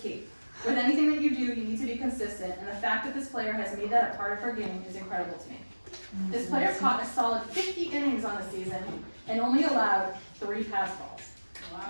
key. With anything that you do, you need to be consistent, and the fact that this player has made that a part of her game is incredible to me. This player caught a solid 50 innings on the season and only allowed 3 pass balls.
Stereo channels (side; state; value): both; inverted; correlation -1.00